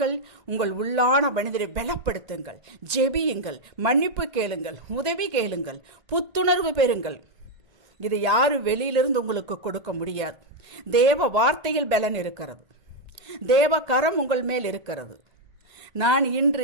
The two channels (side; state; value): left; late; 1.9 ms